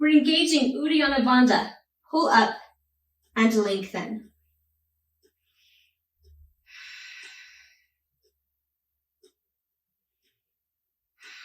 engaging Uddiyana Bandha. Pull up and lengthen.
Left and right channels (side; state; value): both; identical; correlation 1.00